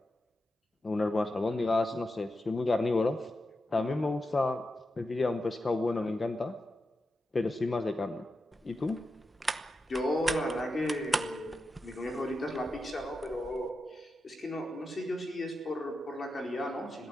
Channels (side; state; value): both; normal; correlation 0.89